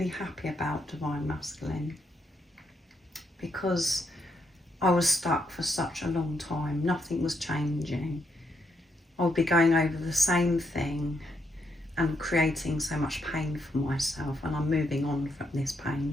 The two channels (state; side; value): normal; both; correlation 0.77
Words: happy about, Divine Masculine, because I was stuck for such a long time. Nothing was changing. I would be going over the same thing and creating so much pain for myself, and I'm moving on from this